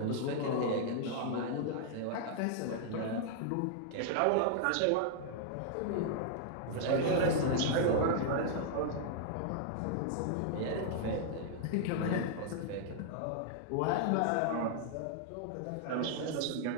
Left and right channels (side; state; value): both; different; correlation 0.00